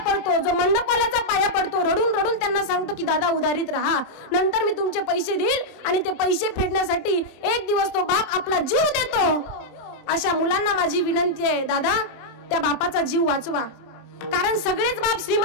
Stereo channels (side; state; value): right; late; 27 ms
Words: पडतो, जो मंडपवाल्याचा पाया पडतो, रडून रडून त्यांना सांगतो की दादा उधारीत राहा, नंतर मी तुमचे पैसे देईल, आणि ते पैसे फेडण्यासाठी एक दिवस तो बाप आपला जीव देतो. अशा मुलांना माझी विनंती आहे, दादा त्या बापाचा जीव वाचवा. कारण सगळेच बाप